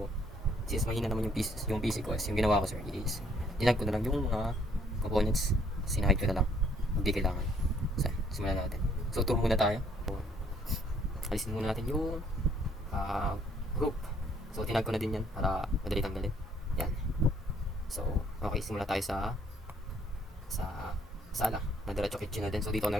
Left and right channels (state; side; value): normal; both; correlation 0.65